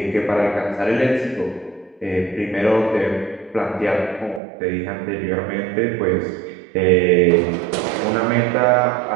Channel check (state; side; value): drops out; left; at 4.4 s